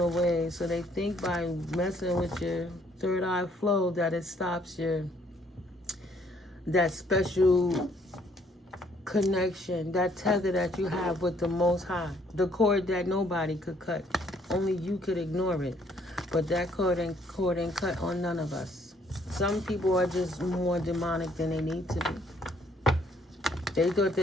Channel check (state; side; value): normal; both; correlation 0.65